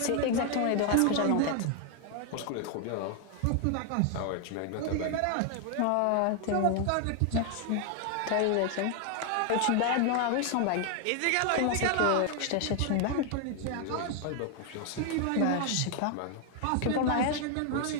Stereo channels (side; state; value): both; different; correlation 0.00